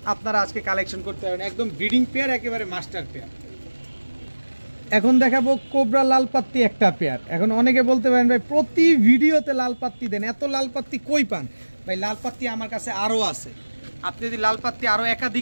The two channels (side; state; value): both; inverted; correlation -1.00